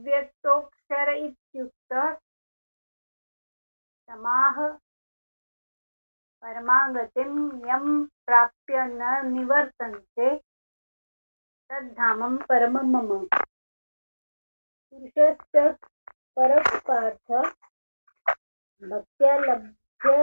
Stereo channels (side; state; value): both; inverted; correlation -1.00